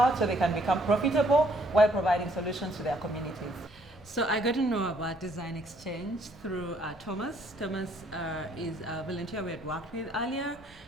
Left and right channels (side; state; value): both; normal; correlation 0.65